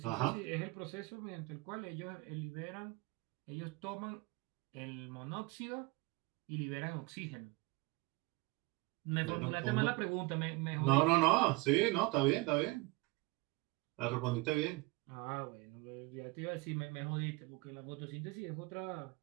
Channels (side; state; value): left; quieter; 23.7 dB